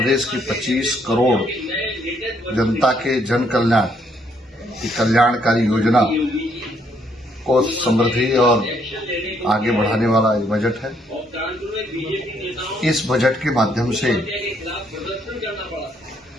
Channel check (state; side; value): normal; both; correlation 0.70